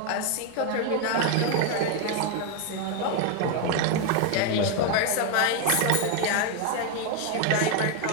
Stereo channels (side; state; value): both; different; correlation 0.01